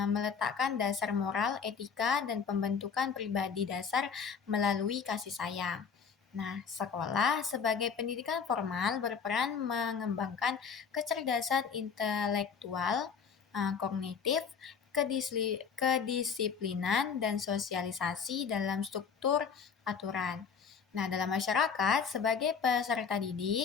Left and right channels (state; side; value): quieter; right; 6.3 dB